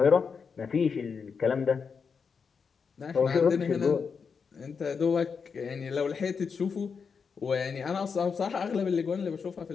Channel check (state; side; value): quieter; right; 5.8 dB